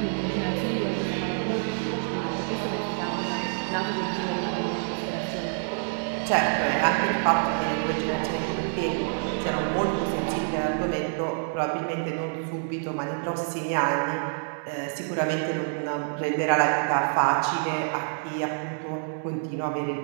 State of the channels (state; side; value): silent; left; 59 dB below the other